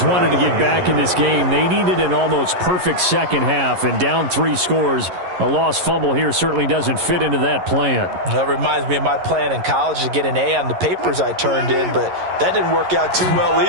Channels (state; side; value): late; left; 11 ms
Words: wanted to get back in this game, they needed an almost perfect second half. And down 3 scores, a lost fumble here certainly doesn't fit into that plan. That reminds me of my plan in college to get an A on the papers I turned in, but that didn't work out too well